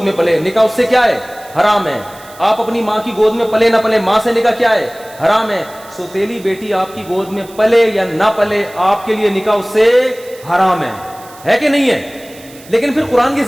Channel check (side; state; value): right; noise; hiss, 22 dB below the sound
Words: میں پلے, نکاح اس سے کیا ہے, حرام ہے. آپ اپنی ماں کی گود میں پلے نہ پلے, ماں سے نکاح کیا ہے, حرام ہے. سوتیلی بیٹی آپ کی گود میں پلے یا نہ پلے, آپ کے لیے نکاح اس سے حرام ہے کہ نہیں ہے. لیکن پھر قرآن کی